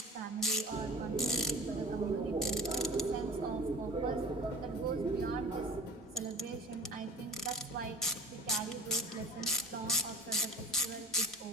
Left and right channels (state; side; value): normal; both; correlation 0.41